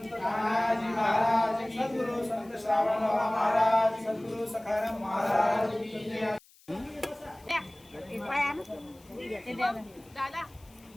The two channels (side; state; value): left; noise; hiss, 27 dB below the sound